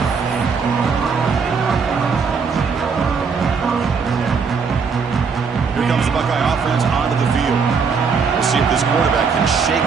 Here comes the Buckeye offense onto the field. We'll see if this quarterback can shake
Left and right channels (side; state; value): left; quieter; 5.5 dB